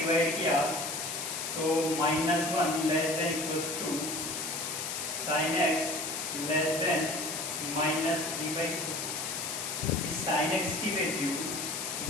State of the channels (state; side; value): noise; left; hiss, 4 dB below the sound